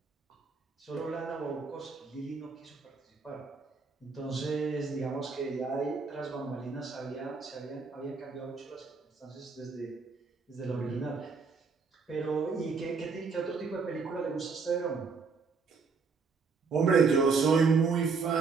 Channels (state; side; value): quieter; left; 4.8 dB